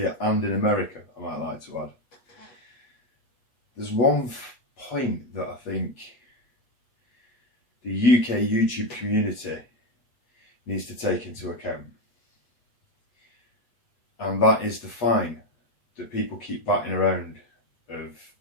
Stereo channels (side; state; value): right; late; 8.3 ms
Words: and in America, I might like to add. There's one point that I think the UK YouTube community needs to take into account, and that is the fine that people keep batting around of,